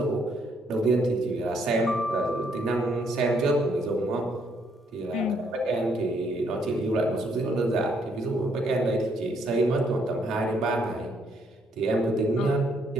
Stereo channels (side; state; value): both; normal; correlation 0.71